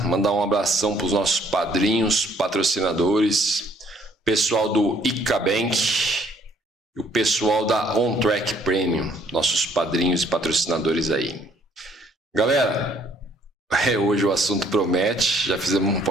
mandar um abração para os nossos padrinhos, patrocinadores, pessoal do ICA Bank e o pessoal da On Track Premium, nossos padrinhos e patrocinadores aí. Galera, hoje o assunto promete, já fizemos um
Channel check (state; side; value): normal; both; correlation 0.63